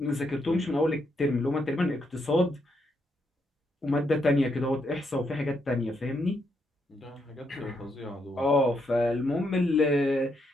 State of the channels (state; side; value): normal; both; correlation 0.78